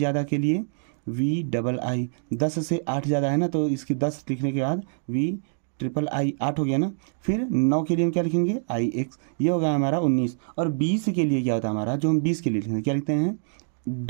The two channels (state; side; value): silent; left; digital silence